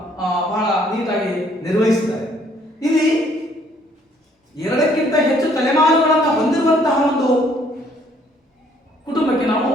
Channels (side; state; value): both; normal; correlation 0.63